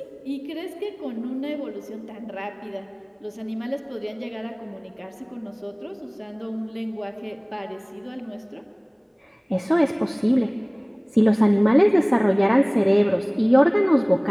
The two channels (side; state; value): both; identical; correlation 1.00